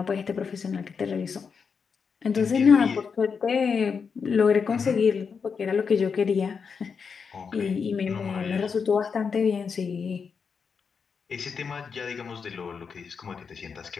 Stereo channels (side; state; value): right; quieter; 5.9 dB